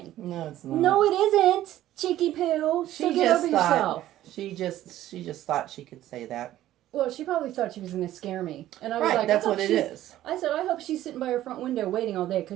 No, it's not. No, it isn't, cheeky poo. So get over yourself. She just thought she could say that. Well, she probably thought she was going to scare me. And I was like, that's what it is. I said, I hope she's sitting by her front window waiting all day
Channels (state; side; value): quieter; left; 13.7 dB